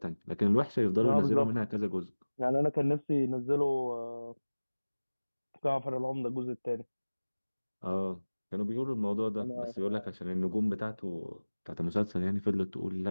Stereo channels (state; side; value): inverted; both; correlation -1.00